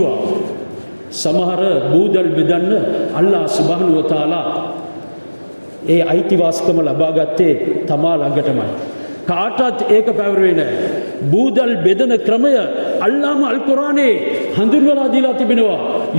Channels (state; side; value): inverted; both; correlation -1.00